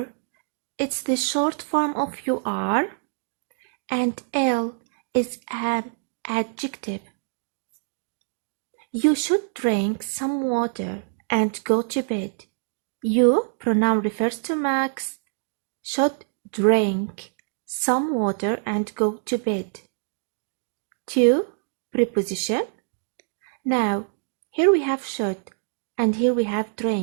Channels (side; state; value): left; silent; digital silence